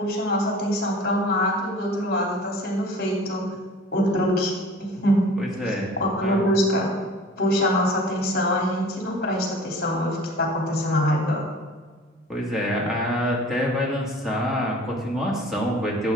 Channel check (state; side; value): normal; both; correlation 0.44